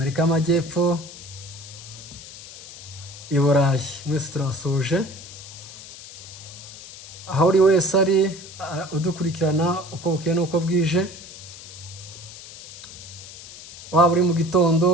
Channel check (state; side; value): noise; left; hiss, 15 dB below the sound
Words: y'Amajyepfo, i Burayi. Mwese turabasuje. Aho uri wese ari udukurikirana uko bukeye n'uko bwije, waba uri mu